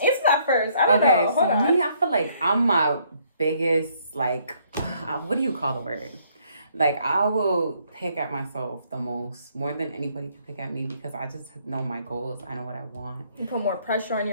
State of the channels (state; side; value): inverted; both; correlation -0.67